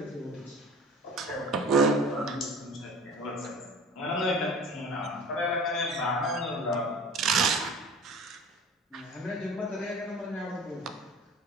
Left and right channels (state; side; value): normal; both; correlation 0.42